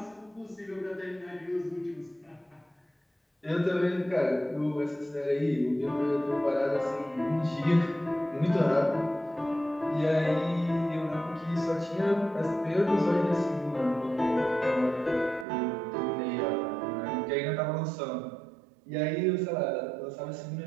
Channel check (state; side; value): drops out; left; at 15.5 s